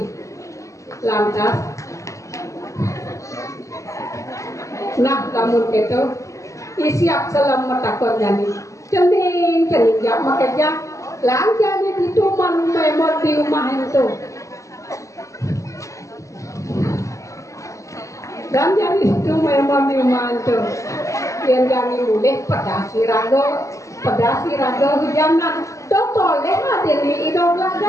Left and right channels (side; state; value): right; late; 0.15 ms